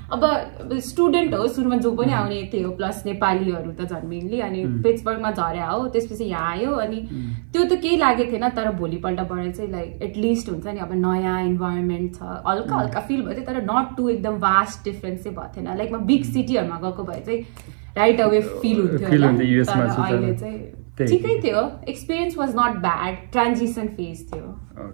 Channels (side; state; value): left; silent; 56 dB below the other